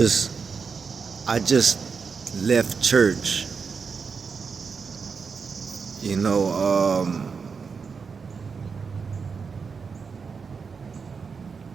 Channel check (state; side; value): quieter; left; 5.5 dB